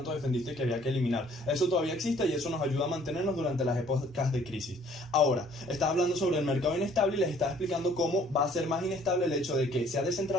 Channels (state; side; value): normal; both; correlation 0.59